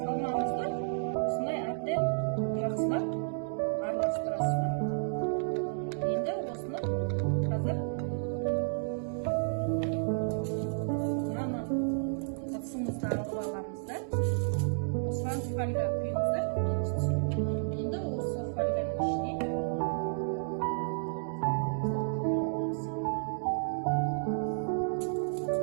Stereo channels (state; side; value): silent; left; digital silence